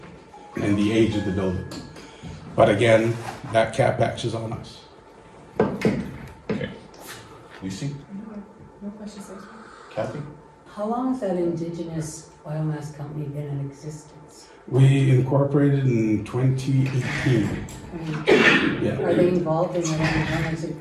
and the age of the building. But again, that CapEx is on us. Okay. Lucy? No questions, sir. Kathy? How long has that indigenous biomass company been in existence? We incorporated in 2018. I mean, Yeah. are they involved in any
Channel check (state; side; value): identical; both; correlation 1.00